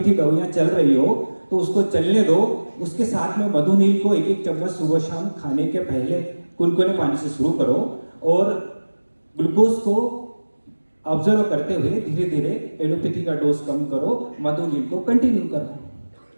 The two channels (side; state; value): both; inverted; correlation -1.00